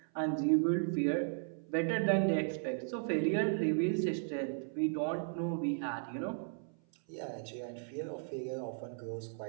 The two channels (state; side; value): silent; left; 54 dB below the other